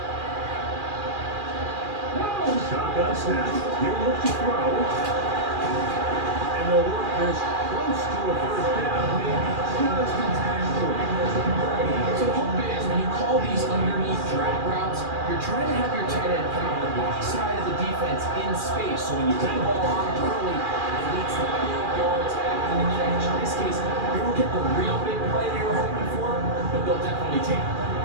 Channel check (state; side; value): late; left; 2.4 ms